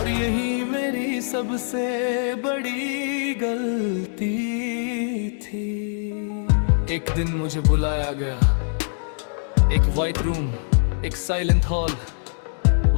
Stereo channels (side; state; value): right; silent; digital silence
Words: यही मेरी सबसे बड़ी गलती थी। एक दिन मुझे बुलाया गया, एक वाइट रूम, एक साइलेंट हॉल।